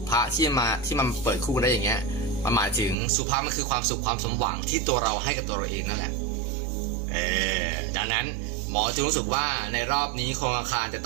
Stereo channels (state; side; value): drops out; left; at 3.0 s